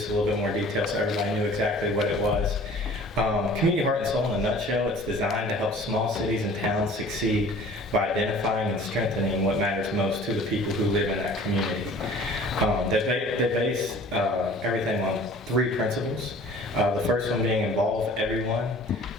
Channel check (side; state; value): both; normal; correlation 0.48